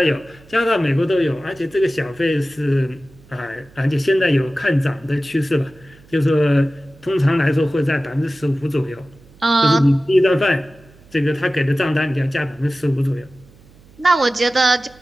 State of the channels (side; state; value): right; noise; hum, 26 dB below the sound